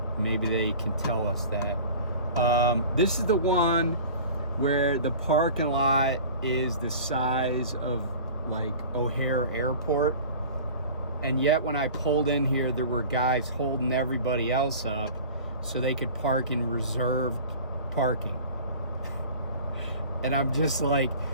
maybe they can tell us that. This is the one where the parking lot is the size of like O'Hare Airport. And yet when I pulled in here, there were guys holding everybody else up so they could park in reserved parking. And I'm just like,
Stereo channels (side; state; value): both; inverted; correlation -0.41